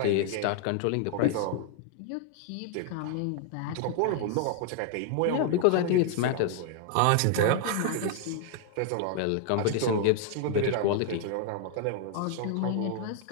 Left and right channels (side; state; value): both; different; correlation 0.00